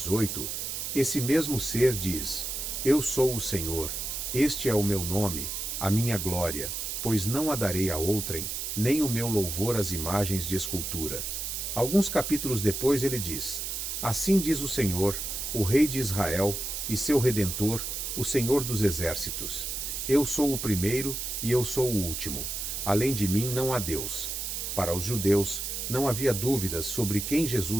esse mesmo ser diz: Eu sou o Senhor, este é o meu nome, a minha glória, pois não a darei a outrem, nem o meu louvor às imagens de escultura. Alguns capítulos depois ele diz: Assim diz o Senhor, o Rei de Israel e seu Redentor, o Senhor dos Exércitos. Eu sou o primeiro e eu sou o último. Além de mim não há Deus. Para os judeus, não havia dúvidas sobre quem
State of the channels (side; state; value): right; noise; hiss, 4 dB below the sound